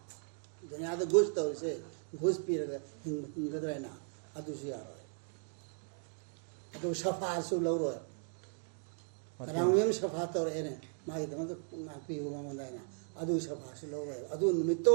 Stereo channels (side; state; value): left; silent; 54 dB below the other